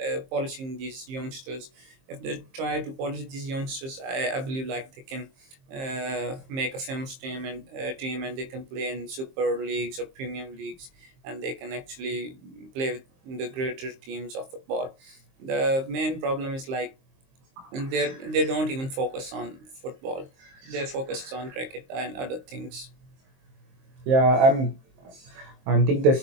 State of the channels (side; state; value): left; late; 23 ms